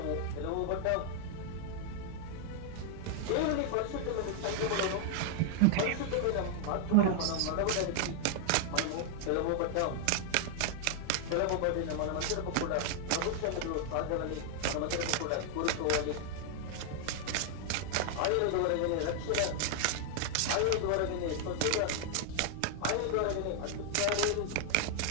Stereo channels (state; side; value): different; both; correlation 0.00